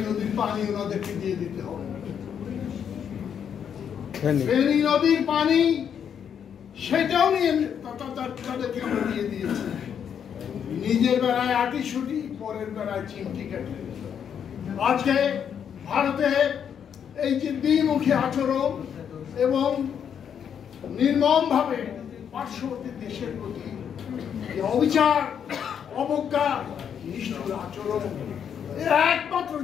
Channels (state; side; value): quieter; right; 8.1 dB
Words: নদীর পানি ওনাদেরকে দিয়ে দিতে হবে, ফেনী নদীর পানি সেটাও নিয়ে তাদেরকে আমরা দিয়ে দিয়েছি। নিজের বেলায় আটিশুটি, পরের বেলায় চিমটি কাটি। আজকে ভারতে এই যে দ্বিমুখী আচরণ এবং নির্মম ভাবে পার্শ্ববর্তী দেশের প্রতি অবিচার, অবজ্ঞা, নিষ্ঠুর আচরণ, এর একমাত্র